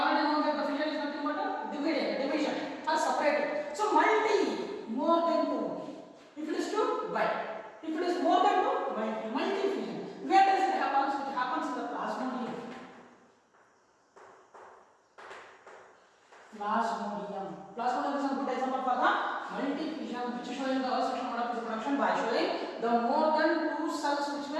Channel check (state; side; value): identical; both; correlation 1.00